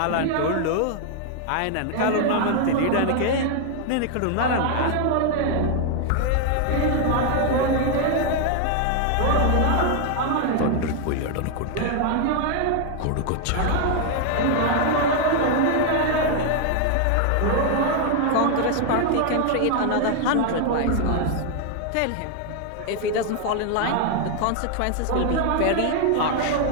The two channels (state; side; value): different; both; correlation 0.00